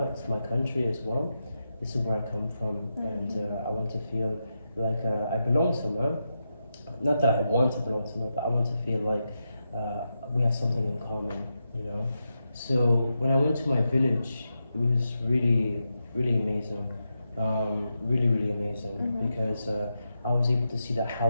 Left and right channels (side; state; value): both; inverted; correlation -0.86